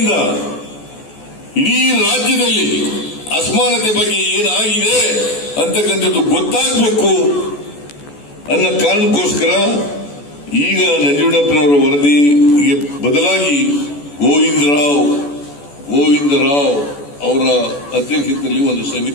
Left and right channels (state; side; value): late; right; 14 ms